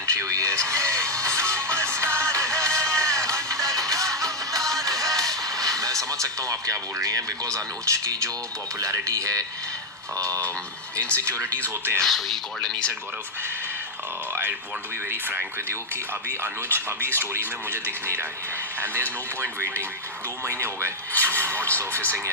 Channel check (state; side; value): normal; both; correlation 0.02